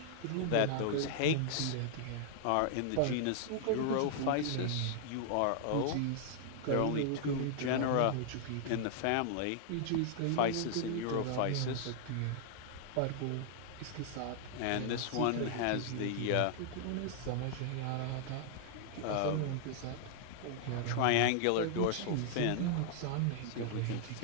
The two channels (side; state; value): both; different; correlation -0.01